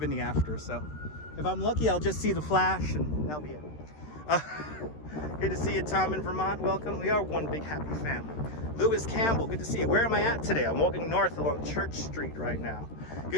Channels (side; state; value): right; late; 13 ms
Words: in the after. So, if I'm lucky, I'll just see the Flash, and that'll be it. Good to see you, Tom in Vermont. Welcome. We are one big happy family. Lewis Campbell, good to see you. Where am I at today? I'm walking north along Church Street right now.